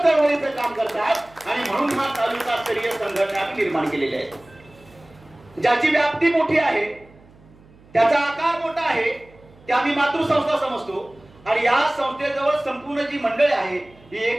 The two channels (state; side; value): noise; right; hum, 26 dB below the sound